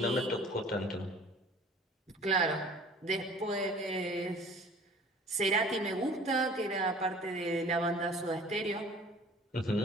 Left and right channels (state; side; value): normal; both; correlation 0.48